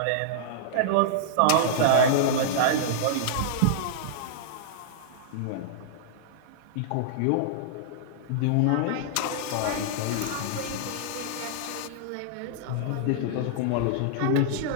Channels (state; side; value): different; both; correlation -0.01